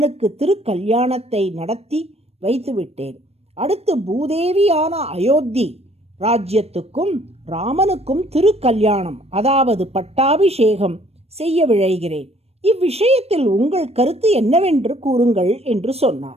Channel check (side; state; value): left; late; 0.30 ms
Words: திருக்கல்யாணத்தை நடத்தி வைத்துவிட்டேன். அடுத்து பூதேவியான அயோத்தி ராஜ்யத்துக்கும் ராமனுக்கும் திருக்கல்யாணம், அதாவது பட்டாபிஷேகம் செய்ய விழைகிறேன். இவ்விஷயத்தில் உங்கள் கருத்து என்னவென்று கூறுங்கள் என்று